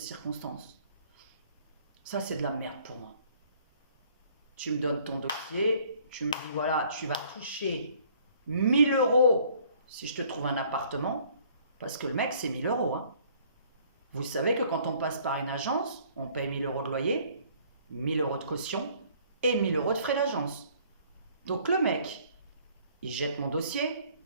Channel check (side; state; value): both; inverted; correlation -0.58